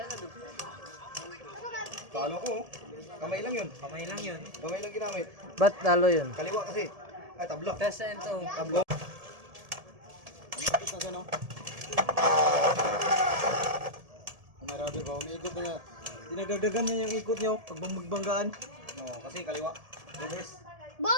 Talo ko. Kamay lang yun. Kamay lang yun. Kamay lang ginamit. Ba't talo yun? Kaliwa kasi. Ay, tablo. Test and to. Tablo. Umakit na siya, no? Marami ba? Umiikot na nga. Dinagdagan niya yung ikot niyo pag magbanggaan. No, kasi kaliwa. Reverse.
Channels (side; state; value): left; late; 1.7 ms